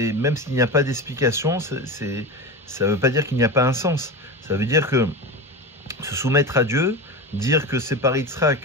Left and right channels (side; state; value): both; normal; correlation 0.24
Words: s'il n'y a pas d'explication, ça ne veut pas dire qu'il n'y a pas un sens. Ça veut dire que se soumettre à Dieu, dire que c'est par